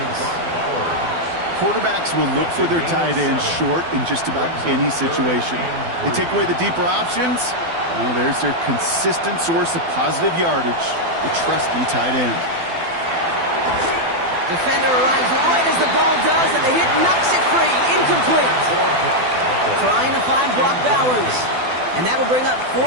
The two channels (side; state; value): left; late; 12 ms